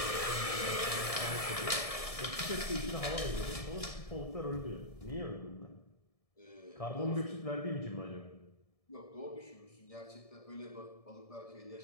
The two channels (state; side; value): late; right; 1.7 ms